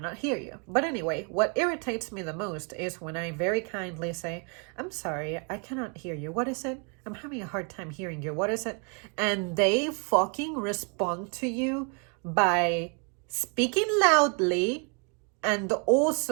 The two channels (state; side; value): quieter; left; 36.9 dB